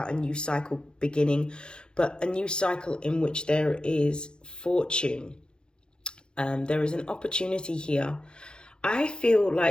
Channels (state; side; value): late; right; 0.049 ms